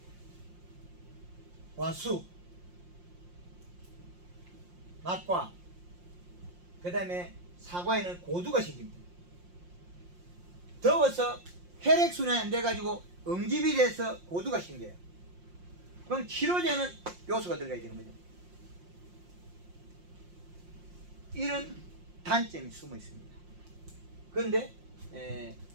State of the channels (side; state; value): left; late; 5.6 ms